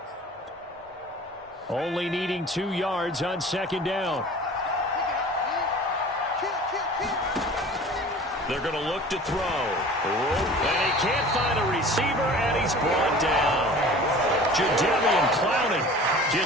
Only needing 2 yards on 2nd down. They're going to look to throw. And he can't find a receiver, and he's brought down. Jadeveon Clowney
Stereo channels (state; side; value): normal; both; correlation 0.43